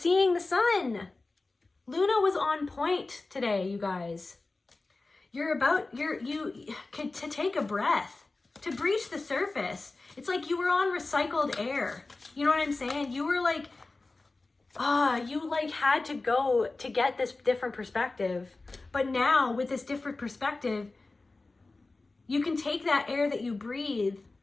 the sun. Luna was on point today, you guys. To take a breath, to breach the surface. It's like you were on recycled air. You know what I'm saying? You were like, you like had to go to get this different perspective. But now with this different perspective, you can take that air that you breathe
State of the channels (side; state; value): right; quieter; 3.4 dB